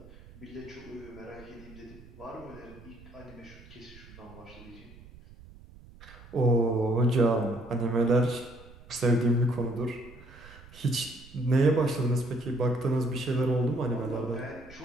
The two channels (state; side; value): noise; right; rumble, 20 dB below the sound